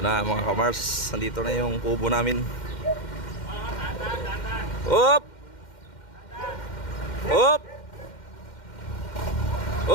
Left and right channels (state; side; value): late; right; 2.1 ms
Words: na mga kamars, nandito na yung kubo namin. Hop! Hop!